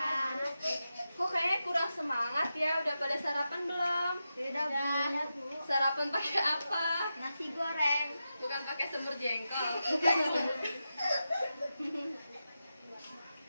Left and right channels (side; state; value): both; inverted; correlation -0.90